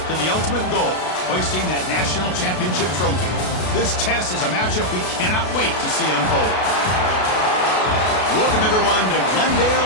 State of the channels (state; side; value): late; right; 32 ms